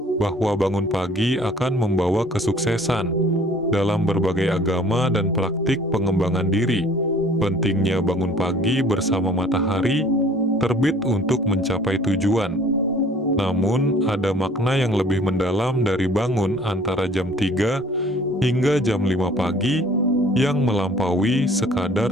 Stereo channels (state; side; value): normal; both; correlation 0.52